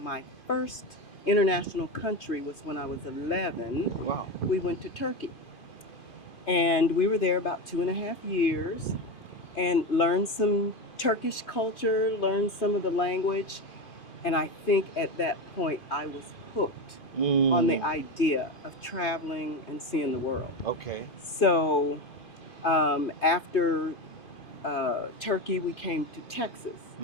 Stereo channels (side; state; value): right; late; 2.5 ms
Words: first international country was when I was 11. Wow. We went to Turkey. And we were there about 2.5 years and learned some Turkish culture, learned some of the language. And I think at that point I was hooked on the idea of traveling and seeing the world. Okay. So after Turkey, we came to Texas.